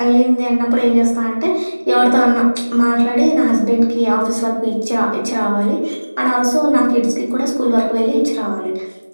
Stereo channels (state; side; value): inverted; both; correlation -1.00